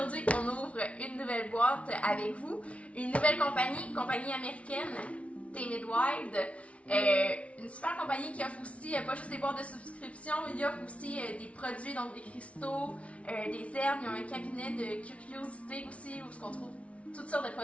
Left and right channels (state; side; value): late; right; 0.063 ms